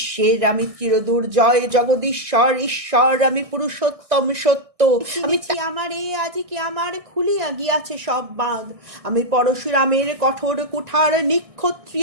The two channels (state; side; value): late; left; 1.6 ms